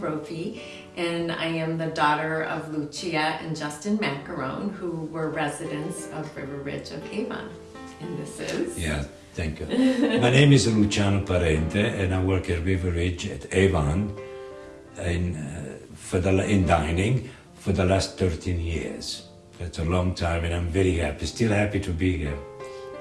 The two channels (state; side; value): identical; both; correlation 1.00